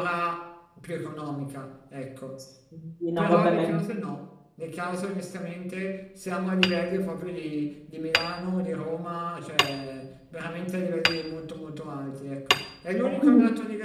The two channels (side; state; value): both; identical; correlation 1.00